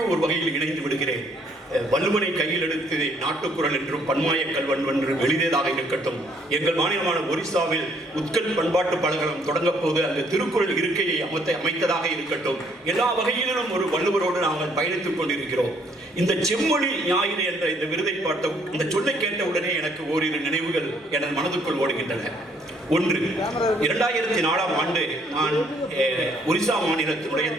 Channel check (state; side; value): normal; both; correlation 0.65